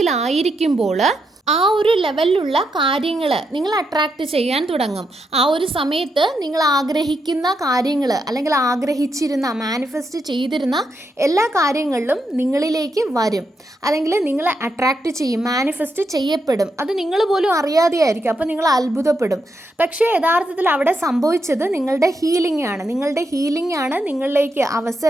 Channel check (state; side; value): normal; both; correlation 0.82